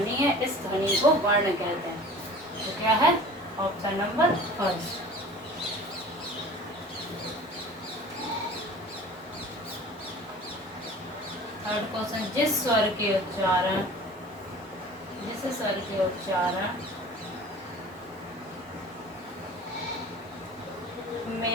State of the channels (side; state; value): both; normal; correlation 0.42